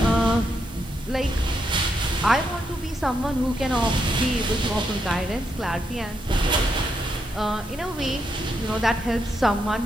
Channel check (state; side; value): normal; both; correlation 0.80